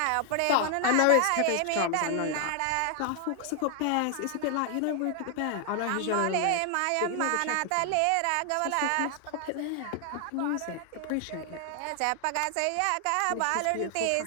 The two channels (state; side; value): different; both; correlation 0.00